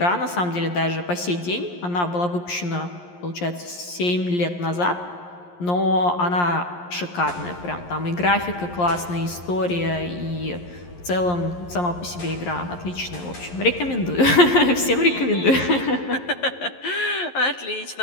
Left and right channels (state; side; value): late; right; 11 ms